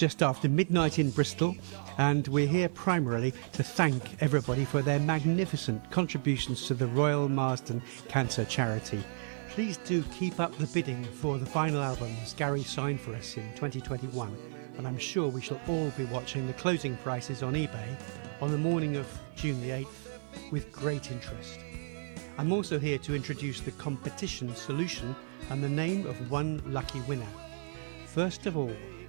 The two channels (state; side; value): silent; left; digital silence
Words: after midnight in Bristol, and we're here primarily to thank everybody for their magnificent contributions to the Royal Marsden Cancer Charity. Please do keep up the bidding for the final albums Gary signed for us in 2021, and I'm sure we shall all be watching the closing prices on eBay on the morning of June the 8th with great interest. I'm also here to introduce the competition solution and the name of one lucky winner. First of all,